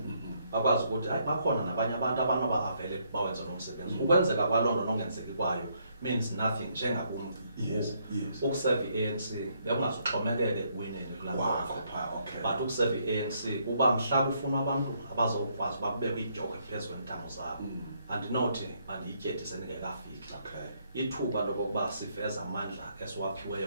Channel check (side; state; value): both; inverted; correlation -0.72